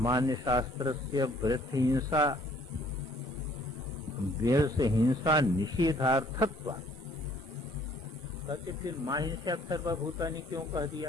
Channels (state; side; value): normal; both; correlation 0.60